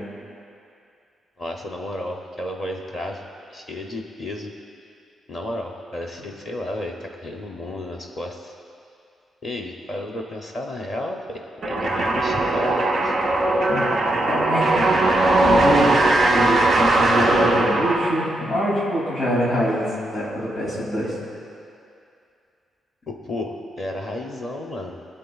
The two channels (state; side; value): normal; both; correlation 0.81